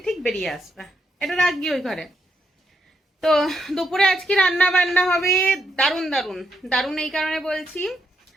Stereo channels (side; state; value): both; normal; correlation 0.80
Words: ঠিক বেরিয়ে আসবে। এটা রাখবি ওই ঘরে। তো দুপুরে আজকে রান্না বান্না হবে দারুণ দারুণ দারুণ। এই কারণে বলছি,